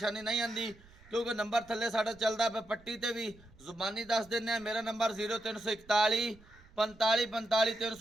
नहीं आती क्योंकि नंबर थले साडा चलदा पे पट्टी ते भी जुबानी दस देने। मेरा नंबर 0341 45 45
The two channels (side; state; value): right; noise; rumble, 25 dB below the sound